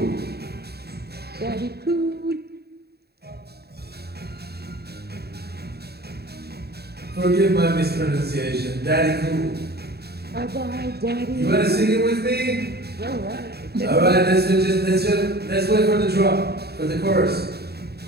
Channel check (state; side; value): late; left; 0.47 ms